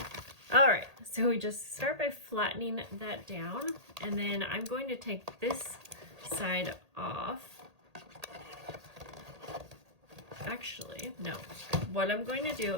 All right, so we just start by flattening that down, and then I'm going to take this side off. Actually, no. What I'm going to do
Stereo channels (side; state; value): left; late; 1.8 ms